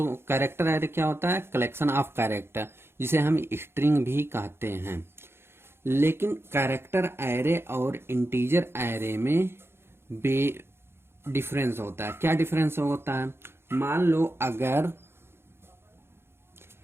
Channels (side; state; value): left; late; 0.12 ms